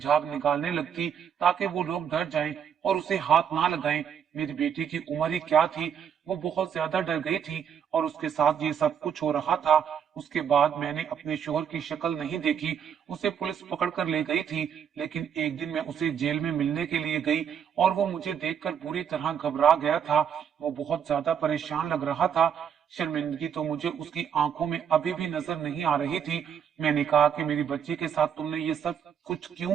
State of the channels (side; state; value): left; quieter; 8.1 dB